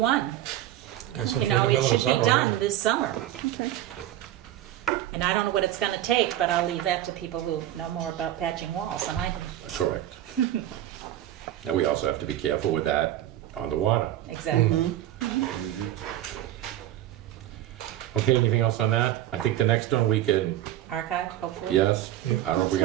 Yeah, so You know, for the it middle of should be summer, done right? this summer. Okay. And I don't know what it's gonna take, but I'll leave that to people who know more about patching walls than I do. Correct. Now, we also have to be careful with that on the water. Exactly. Okay, anything else on that? I think the next one we can, Archive, hopefully? yes, Yeah. I don't know if we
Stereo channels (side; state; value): left; quieter; 13.2 dB